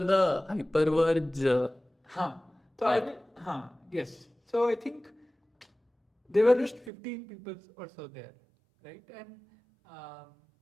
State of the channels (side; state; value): left; drops out; at 6.9 s